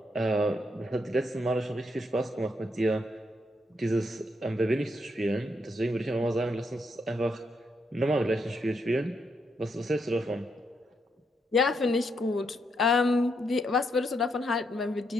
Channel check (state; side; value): normal; both; correlation 0.78